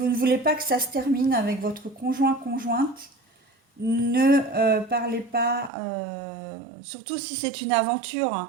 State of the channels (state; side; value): drops out; left; at 5.7 s